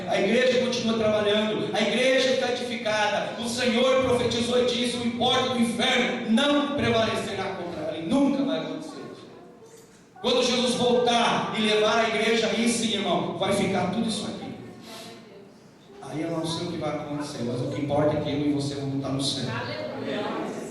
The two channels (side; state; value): both; identical; correlation 1.00